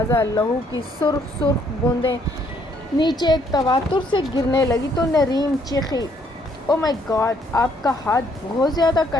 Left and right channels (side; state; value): both; normal; correlation 0.68